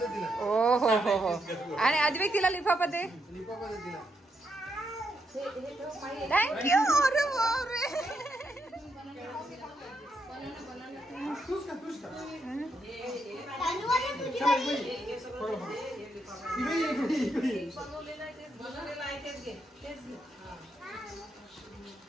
ओ हो हो हो. आणि आद्विक तिला लिफाफा दे. थँक्यू. अरे बापरे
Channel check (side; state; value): both; normal; correlation 0.80